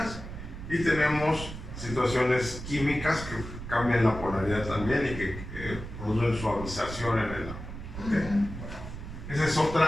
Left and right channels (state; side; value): noise; right; rumble, 10 dB below the sound